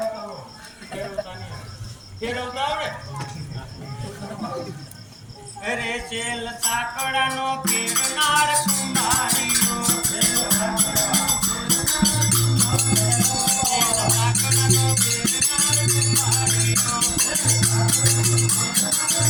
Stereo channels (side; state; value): both; identical; correlation 1.00